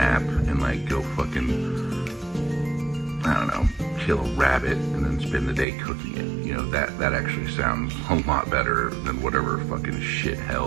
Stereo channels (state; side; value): drops out; left; at 5.7 s